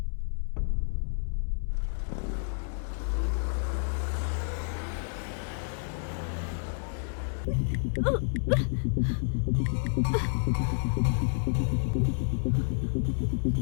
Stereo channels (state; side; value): silent; right; 58 dB below the other